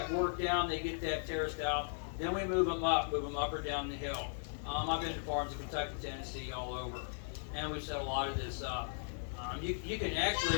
work down, they get that terraced out, then we move them up or down the hill. I've been to farms in Kentucky, Tennessee, all over, and we've set a lot of this up. You can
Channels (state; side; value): silent; right; 53 dB below the other